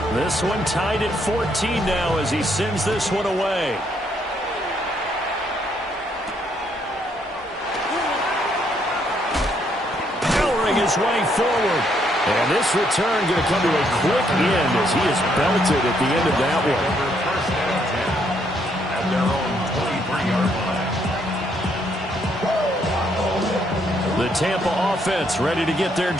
This one tied at 14 now as he sends this one away. Powering his way forward. And this return going to come to a quick end as he is belted at the end of that one. At their own 23-yard line. The Tampa offense ready to get their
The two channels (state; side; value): normal; both; correlation 0.72